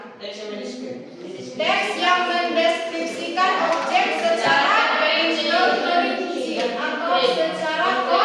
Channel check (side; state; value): both; identical; correlation 1.00